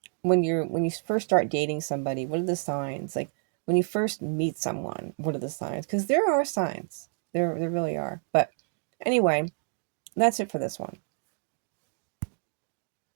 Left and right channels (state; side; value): silent; left; 59 dB below the other